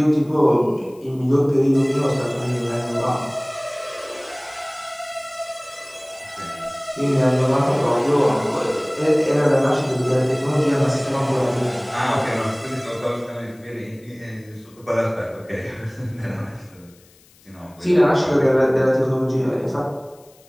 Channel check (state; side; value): noise; left; hiss, 29 dB below the sound